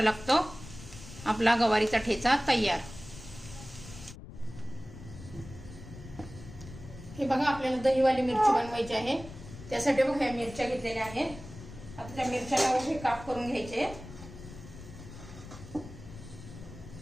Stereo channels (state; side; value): noise; left; rumble, 15 dB below the sound